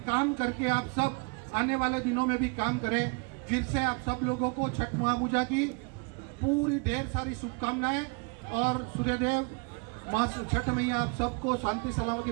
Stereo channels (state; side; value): quieter; left; 32.7 dB